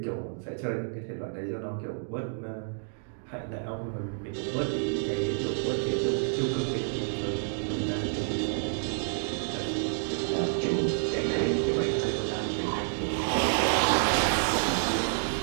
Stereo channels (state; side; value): silent; left; digital silence